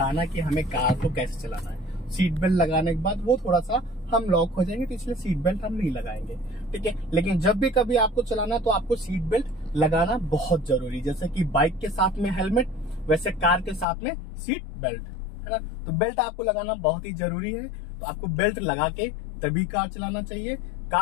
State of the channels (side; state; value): right; drops out; at 13.9 s